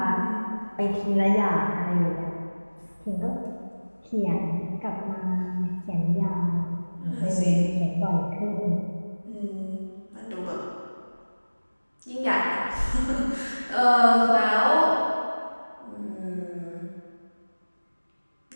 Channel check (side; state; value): both; inverted; correlation -1.00